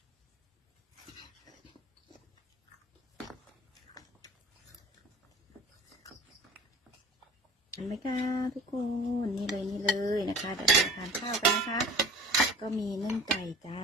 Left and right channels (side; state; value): both; normal; correlation 0.43